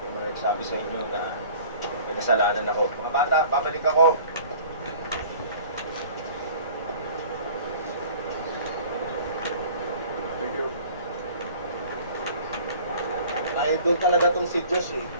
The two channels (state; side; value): inverted; both; correlation -0.47